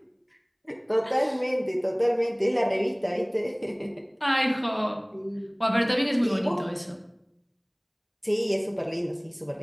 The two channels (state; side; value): identical; both; correlation 1.00